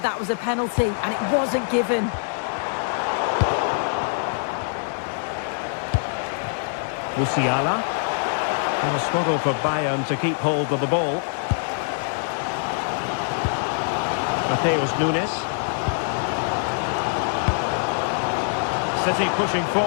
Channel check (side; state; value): right; silent; digital silence